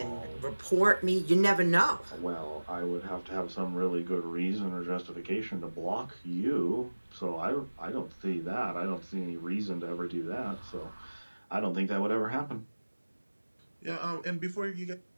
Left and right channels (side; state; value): both; inverted; correlation -1.00